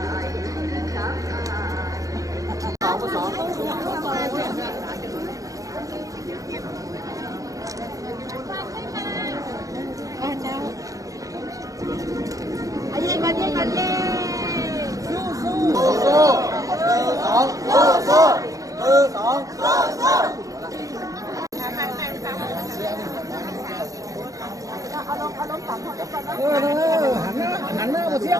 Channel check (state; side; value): late; left; 0.17 ms